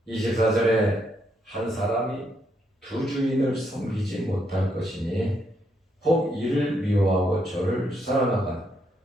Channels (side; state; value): both; normal; correlation 0.76